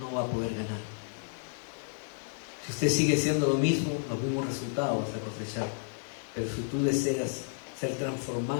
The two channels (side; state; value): right; silent; digital silence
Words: va a poder ganar. Si usted sigue haciendo lo mismo, los mismos resultados vas a cosechar. Pero si tú deseas ser